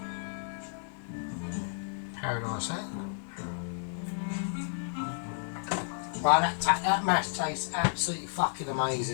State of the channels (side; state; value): right; silent; 56 dB below the other